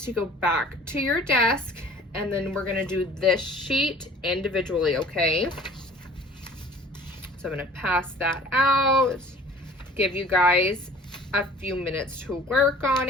to go back to your desk, and then we're gonna do this sheet individually, okay? So I'm gonna pass that out, give you guys a few minutes to work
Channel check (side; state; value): both; normal; correlation 0.48